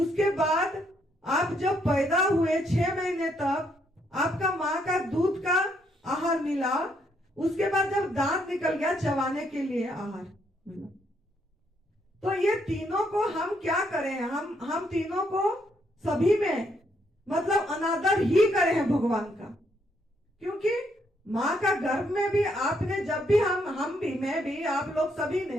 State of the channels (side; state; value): both; normal; correlation 0.73